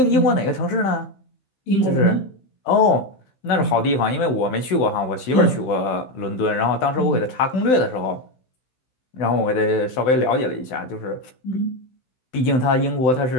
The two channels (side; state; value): right; late; 16 ms